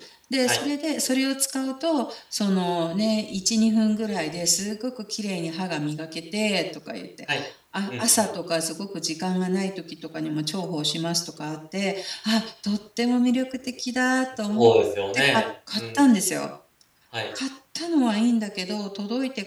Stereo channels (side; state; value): both; identical; correlation 1.00